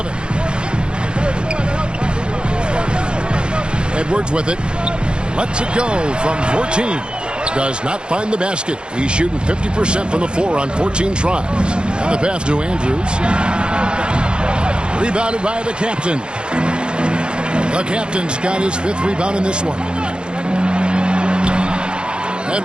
Edwards with it. Lets it go from 14. Does not find the basket. He's shooting 50% from the floor on 14 tries. And the pass to Andrews. Rebounded by the captain. The captain's got his 5th rebound in this one.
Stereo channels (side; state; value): left; late; 0.052 ms